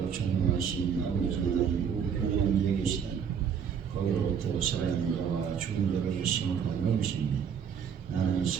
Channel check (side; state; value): left; quieter; 7.4 dB